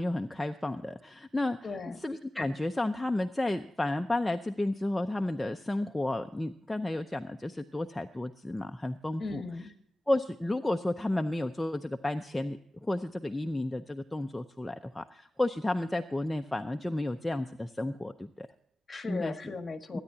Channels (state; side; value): normal; both; correlation 0.97